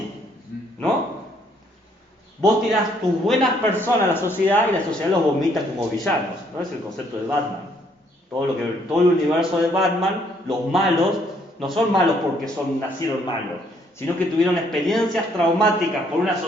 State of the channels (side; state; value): both; normal; correlation 0.67